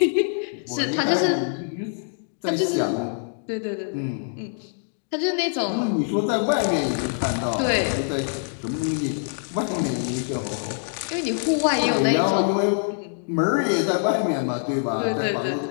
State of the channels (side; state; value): right; silent; digital silence